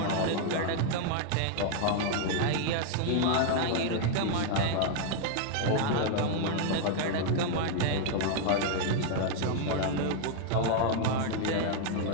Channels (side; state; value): both; different; correlation 0.00